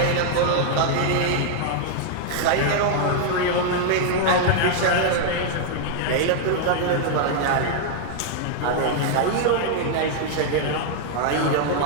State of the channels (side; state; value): both; different; correlation 0.00